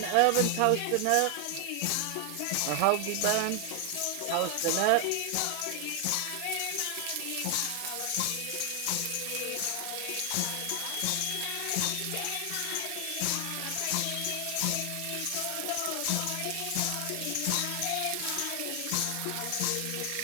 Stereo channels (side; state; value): both; different; correlation 0.00